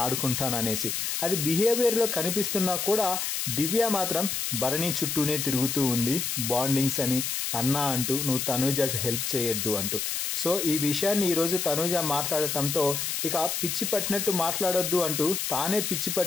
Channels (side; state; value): left; noise; hiss, 1 dB below the sound